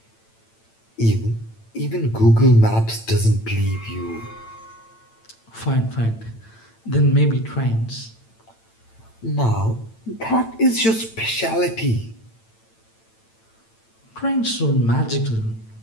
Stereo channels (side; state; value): right; late; 8.9 ms